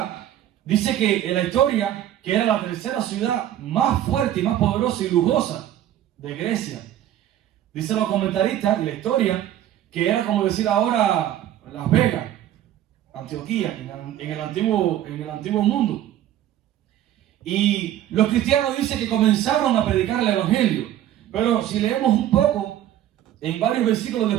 dice que en la historia, que era la tercera ciudad más fuerte y más poderosa y lujosa de Grecia. Dicen los comentaristas en la historia que era como decir ahora Las Vegas, Antioquía, en el antiguo mundo. Y los cristianos dicen que comenzaron a predicar el evangelio. Pero si leemos un poco, en varios versículos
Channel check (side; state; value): left; quieter; 12.1 dB